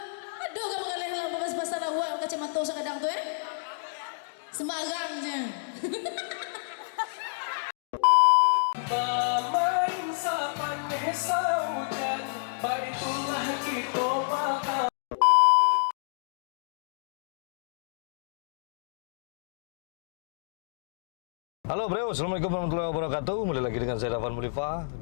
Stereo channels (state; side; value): silent; right; digital silence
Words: Aduh kamu kalian lah babas pasalah wa kacamata sa kadang tu Sembarangnya. Bermain sa paneh sa hujan, baitulah kita makan. Halo bro, assalamualaikum warahmatullahi wabarakatuh. Kembali lagi dengan saya Dafan Mulifa